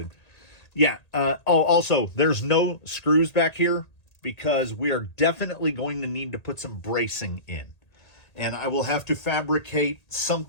Yeah. Also, there's no screws back here because we are definitely going to need to put some bracing in. And I will have to fabricate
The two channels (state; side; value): late; right; 1.8 ms